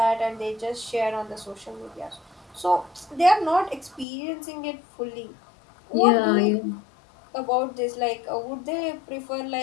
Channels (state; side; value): drops out; right; at 4.0 s